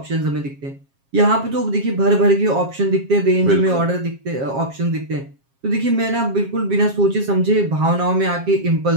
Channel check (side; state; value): left; late; 7.4 ms